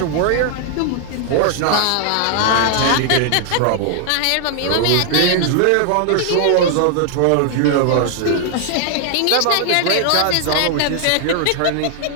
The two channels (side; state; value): both; different; correlation 0.00